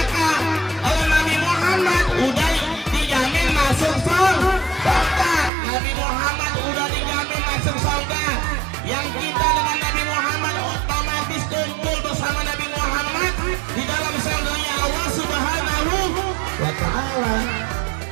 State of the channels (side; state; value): left; drops out; at 5.5 s